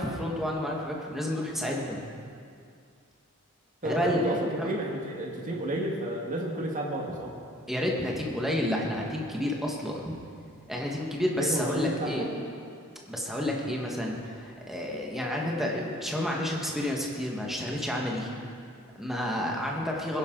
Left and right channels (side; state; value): both; normal; correlation 0.58